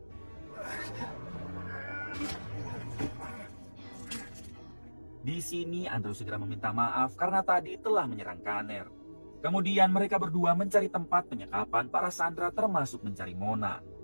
Di sini Andrew segera meminta maaf karena tadi telah menyerang Kanner. Kemudian mereka berdua mencari tempat penyekapan para sandera termasuk mencari Mona.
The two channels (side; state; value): both; inverted; correlation -1.00